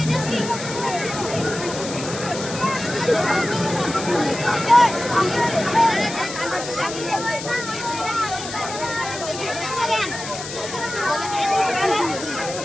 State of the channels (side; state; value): left; noise; hiss, 9 dB below the sound